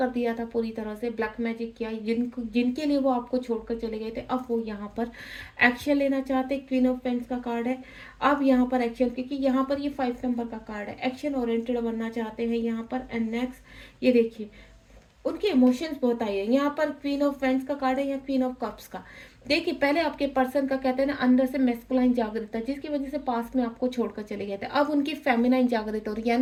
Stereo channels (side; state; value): both; identical; correlation 1.00